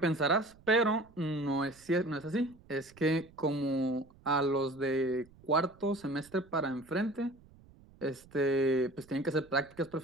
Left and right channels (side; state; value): right; noise; rumble, 26 dB below the sound